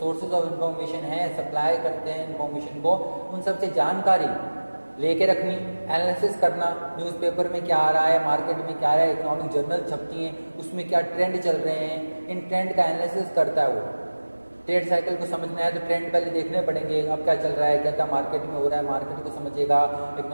ऑफ इन्फॉर्मेशन है, सप्लाई करते हैं इन्फॉर्मेशन को, उन सब से जानकारी लेके रखनी, एनालिसिस करना, न्यूज़पेपर में क्या आ रहा है, मार्केट में क्या आ रहा है, इकोनॉमिक जर्नल छपती हैं उसमें क्या ट्रेंड चल रहे हैं, इन ट्रेंड का एनालिसिस करता है वो। ट्रेड साइकिल को समझना है तो ट्रेंड पहले देखने पड़ेंगे, अब क्या चल रहा है, क्या क्या मार्केट में हो रहा है, मार्केट को समझेगा,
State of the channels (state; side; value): inverted; both; correlation -1.00